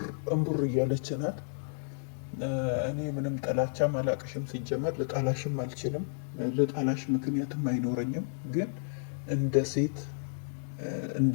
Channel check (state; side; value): silent; right; digital silence